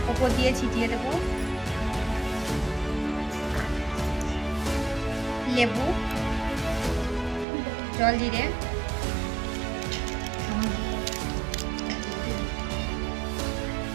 ওপর দিয়ে ছিটিয়ে দেবো। লেবু, জল জিরে,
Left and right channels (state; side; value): drops out; left; at 7.5 s